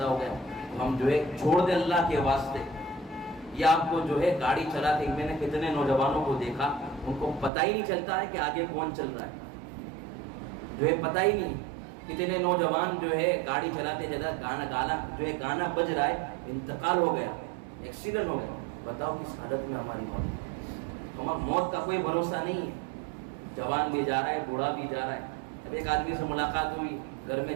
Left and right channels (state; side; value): drops out; left; at 7.5 s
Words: ہو گیا۔ ہم جو ہے چھوڑ دیں اللہ کے واسطے۔ یہ آپ کو جو ہے گاڑی چلاتے، میں نے کتنے نوجوانوں کو دیکھا، ان کو پتہ ہی نہیں چلتا ہے کہ آگے کون چل رہا ہے، جو ہے پتہ ہی نہیں۔ کتنے نوجوان جو ہے گاڑی چلاتے گانا بج رہا ہے، انتقال ہو گیا، ایکسیڈنٹ ہو گیا۔ بتاؤ کس حالت میں ہماری موت کا کوئی بھروسہ نہیں ہے۔ جوان بھی جا رہا ہے، بوڑھا بھی جا رہا ہے۔ اب ایک آدمی سے ملاقات ہوئی، گھر میں